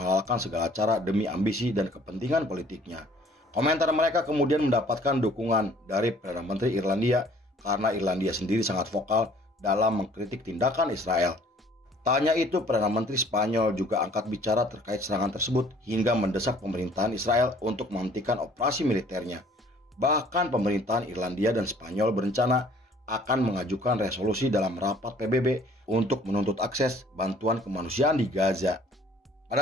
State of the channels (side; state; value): both; normal; correlation 0.56